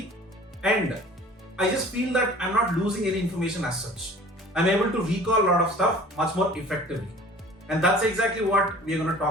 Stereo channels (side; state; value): both; normal; correlation 0.46